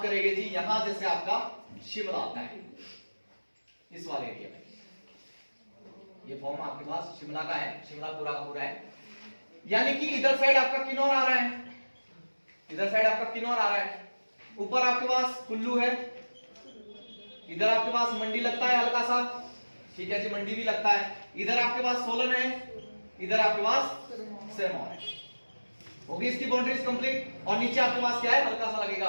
करेंगे जी यहां जैसे आपका शिमला आता है, इस वाले एरिया में। ये फॉर्म आपके पास शिमला का है, शिमला पूरा का पूरा है। यानी कि इधर साइड आपका किन्नौर आ रहा है, इधर साइड आपका किन्नौर आ रहा है, ऊपर आपके पास कुल्लू है, इधर आपके पास मंडी लगता है हल्का सा, ठीक है जी, मंडी भी लगता है। इधर आपके पास सोलन है, इधर आपके पास सिरमौर है। होगी इसकी बाउंड्रीज कंप्लीट। और नीचे आपके पास क्या है, हल्का सा लगेगा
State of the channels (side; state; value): both; inverted; correlation -1.00